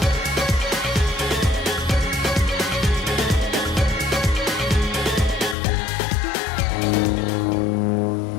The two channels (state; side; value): drops out; right; at 5.6 s